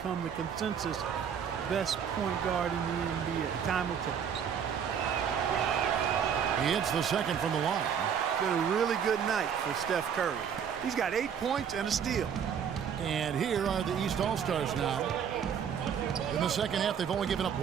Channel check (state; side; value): quieter; left; 7.8 dB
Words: the consensus best point guard in the NBA. Time will tell. He hits the second from the line. Been a really good night for Steph Curry. He's got 8 points and a steal. And here are the East All-Stars now. In the second half, they've only given up